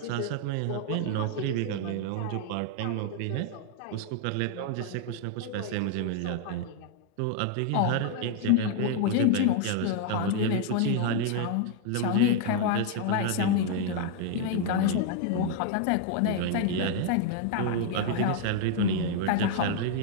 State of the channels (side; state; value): both; different; correlation 0.00